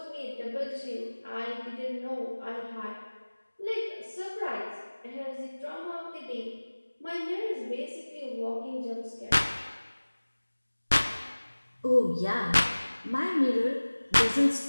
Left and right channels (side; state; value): both; inverted; correlation -1.00